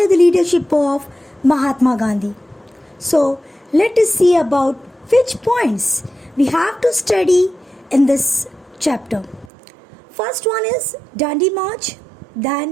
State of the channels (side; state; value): left; drops out; at 9.5 s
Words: the leadership of Mahatma Gandhi. So, let us see about which points we have to study in this chapter. First one is Dandi March,